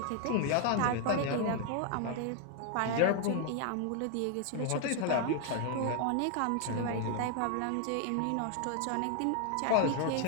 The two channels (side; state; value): both; different; correlation 0.00